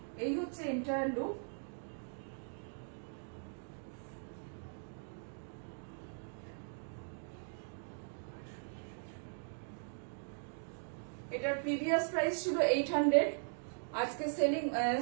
এই হচ্ছে এন্টায়ার লুক। এটার প্রিভিয়াস প্রাইস ছিল 800, আজকে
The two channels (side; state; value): left; silent; digital silence